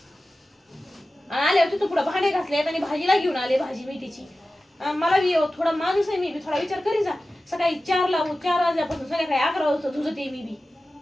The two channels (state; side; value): normal; both; correlation 0.95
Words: आल्यावर तिथं पुढे भांडे घासले आणि भाजीला घेऊन आले, भाजी मेथीची. मला बी थोडा माणूस आहे, मी बी थोडा विचार करी जा. सकाळी 4 वाजल्यापासून संध्याकाळी 11 वाजता झुजते मी बी.